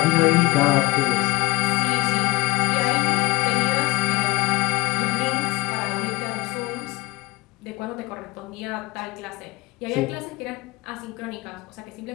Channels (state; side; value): quieter; right; 21.6 dB